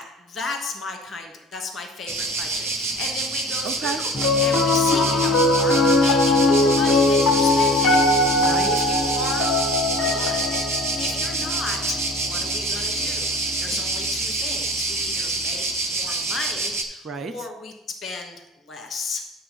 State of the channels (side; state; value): both; normal; correlation 0.40